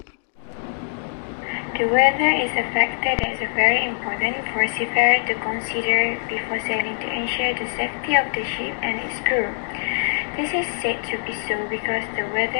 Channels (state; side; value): silent; right; digital silence